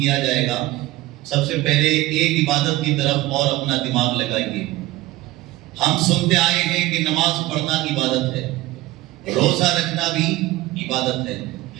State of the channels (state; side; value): quieter; left; 17.6 dB